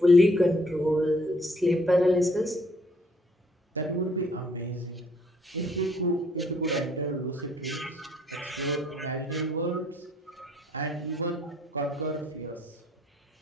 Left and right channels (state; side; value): normal; both; correlation 0.64